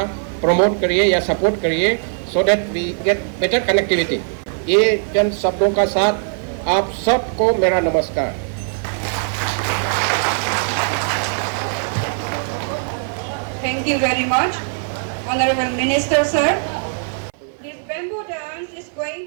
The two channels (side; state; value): left; silent; 56 dB below the other